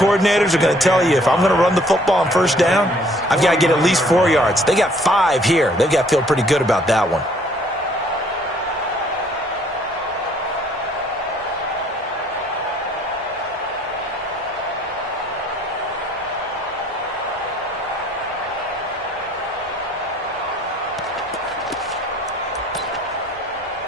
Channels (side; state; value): both; normal; correlation 0.60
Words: are going to tell you, if I'm going to run the football on 1st down, I've got to get at least 4 yards. They got 5 here. They've got to feel pretty good about that one.